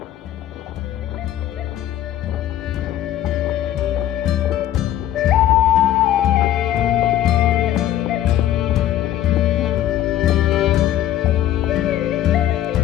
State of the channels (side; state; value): right; quieter; 12.2 dB